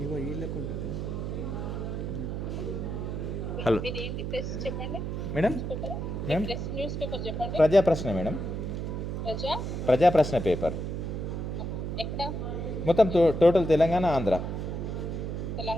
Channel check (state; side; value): noise; right; hum, 3 dB below the sound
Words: Hello madam, ma'am Prajaprashna madam, Prajaprashna paper మొత్తం టోటల్ తెలంగాణ ఆంధ్ర